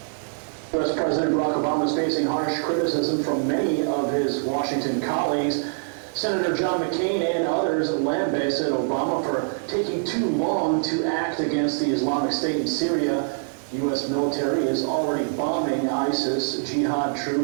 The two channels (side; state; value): left; silent; 62 dB below the other